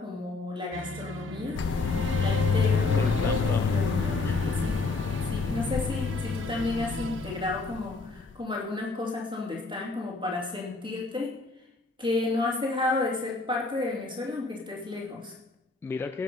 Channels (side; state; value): right; quieter; 3.6 dB